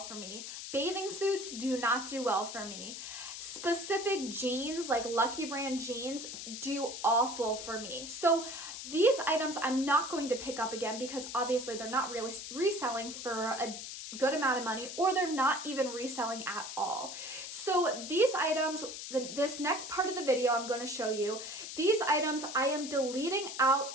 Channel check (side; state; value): left; noise; hiss, 8 dB below the sound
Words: for me. Bathing suits do not do well for me. Specific jeans, like Lucky Brand jeans, do awful for me. So these items I'm not going to pick up again because obviously they're not really reselling for good amount of money, or they're not even reselling at all. So these items, this next part of the video I'm going to show you, these items I am deleting out